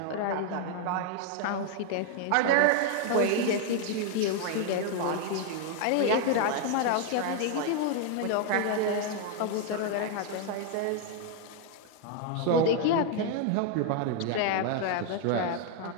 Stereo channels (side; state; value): both; different; correlation 0.00